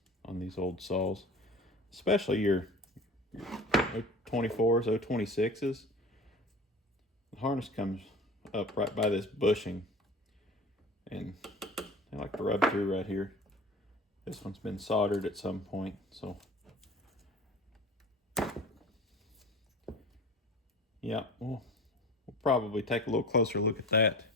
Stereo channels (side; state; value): both; normal; correlation 0.38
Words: on these old saws, especially your 024s, 026s. The harness comes up right by this bushing, and I like to rub through right here. This one's been soldered at some point, so yeah, we'll probably take a little closer look at that